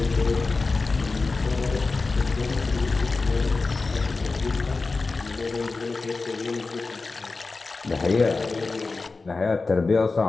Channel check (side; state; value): right; quieter; 3.9 dB